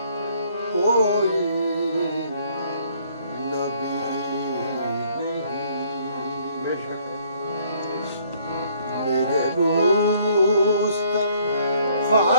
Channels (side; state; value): both; inverted; correlation -0.63